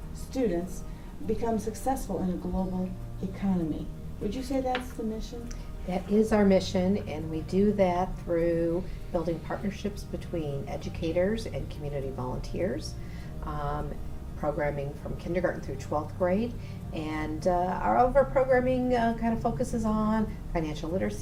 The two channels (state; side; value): identical; both; correlation 1.00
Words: students become successful in a global economy. Would you say that's the mission? That is our mission, and we do that through building partnerships between educators and community volunteers, programming from kindergarten through 12th grade, and our programming kind of focuses on financial